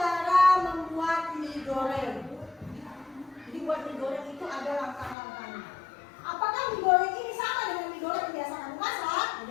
membuat mie goreng. Jadi buat mie goreng itu ada langkah-langkahnya. Apakah mie goreng ini sama dengan mie goreng yang biasa kamu masak?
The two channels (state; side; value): drops out; right; at 5.2 s